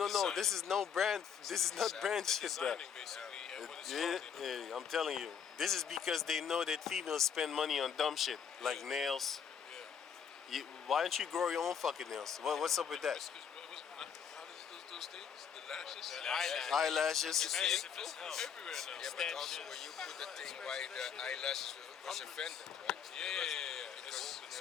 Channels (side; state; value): right; quieter; 7.5 dB